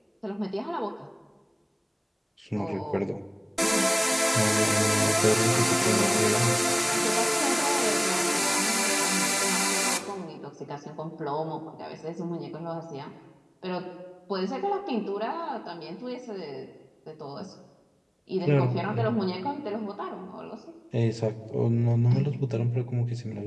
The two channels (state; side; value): identical; both; correlation 1.00